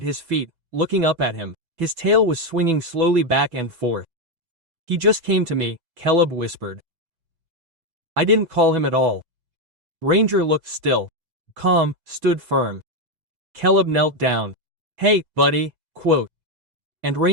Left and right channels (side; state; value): left; late; 6.0 ms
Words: his feet, looking up at him. His tail was swinging slowly back and forth. "He just came to me," Caleb whispered. I didn't call him at all. Ranger looked still. Calm, stood firm. Caleb knelt down. "Hey, buddy," quote. And